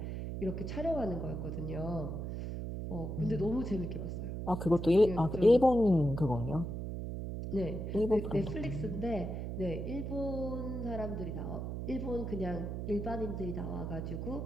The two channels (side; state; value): right; noise; hum, 5 dB below the sound